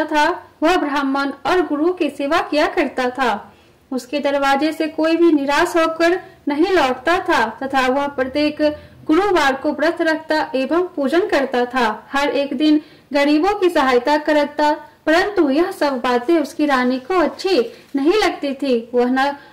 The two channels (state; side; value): identical; both; correlation 1.00